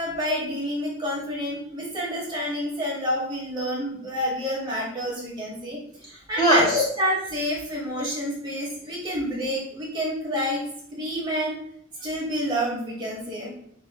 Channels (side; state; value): both; normal; correlation 0.09